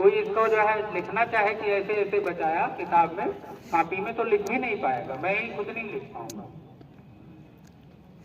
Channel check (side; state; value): both; identical; correlation 1.00